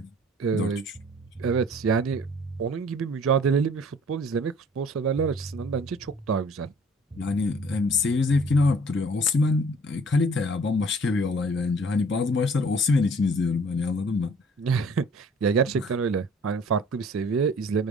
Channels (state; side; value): normal; both; correlation 0.53